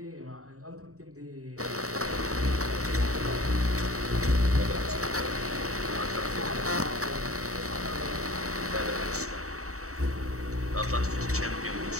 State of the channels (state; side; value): late; left; 0.65 ms